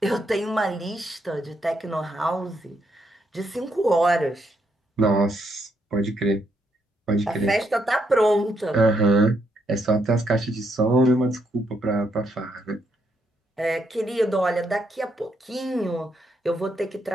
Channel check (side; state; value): both; normal; correlation 0.77